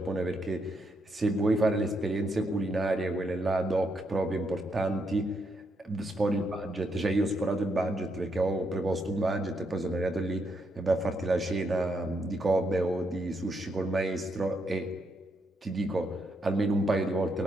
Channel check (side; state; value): both; normal; correlation 0.78